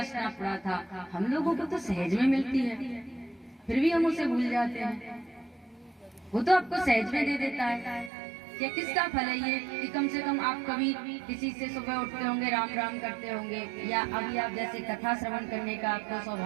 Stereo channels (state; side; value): drops out; left; at 8.1 s